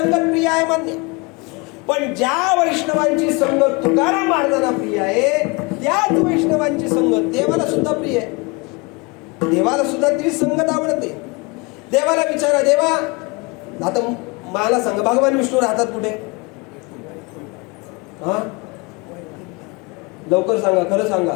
प्रिय आहे मान्य, पण ज्या वैष्णवांची संगत तुकाराम महाराजांना प्रिय आहे त्याच वैष्णवांची संगत देवाला सुद्धा प्रिय आहे. देवाला सुद्धा ती संगत आवडते. देवाला विचारा, देवा आता मला सांगा भगवान विष्णू राहतात कुठे? हा लवकर सांगा, खरं सांगा,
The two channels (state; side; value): quieter; right; 27.8 dB